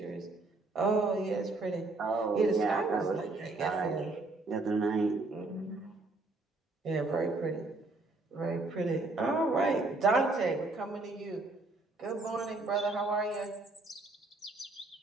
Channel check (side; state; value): left; quieter; 3.2 dB